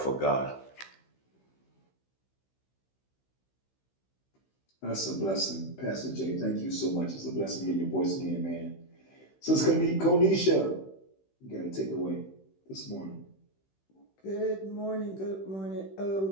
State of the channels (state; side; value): late; right; 16 ms